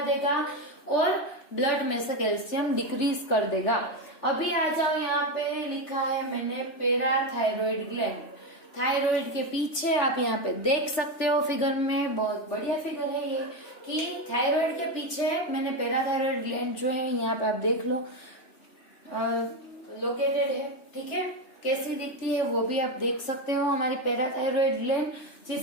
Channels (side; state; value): right; late; 3.4 ms